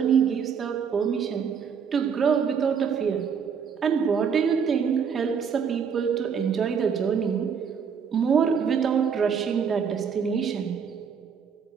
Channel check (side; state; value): left; quieter; 6.8 dB